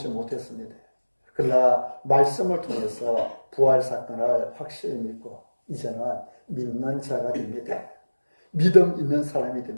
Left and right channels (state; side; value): inverted; both; correlation -1.00